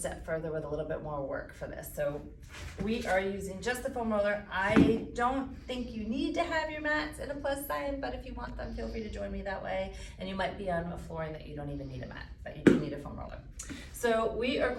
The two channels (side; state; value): both; identical; correlation 1.00